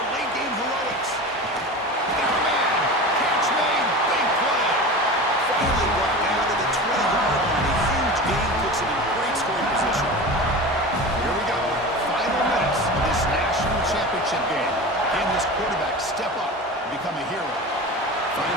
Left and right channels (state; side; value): normal; both; correlation 0.31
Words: late-game heroics. Got a man. Catch made. Big play. Finally brought down to the 20-yard line. A huge gain puts him in great scoring position. Here we go. Final minutes of this national championship game. Can this quarterback step up and become a hero?